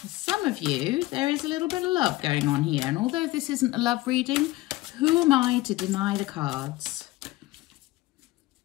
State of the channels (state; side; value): quieter; right; 18.5 dB